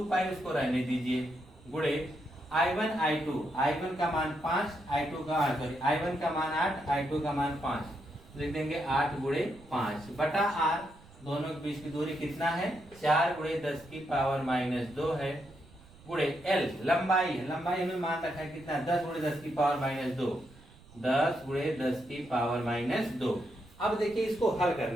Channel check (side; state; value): right; noise; rumble, 23 dB below the sound